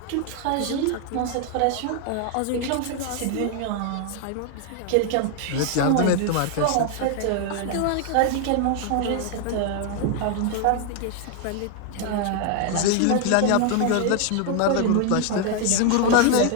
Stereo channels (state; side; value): different; both; correlation 0.00